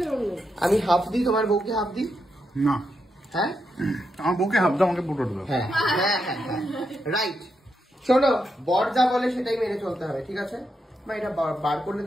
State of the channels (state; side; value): normal; both; correlation 0.83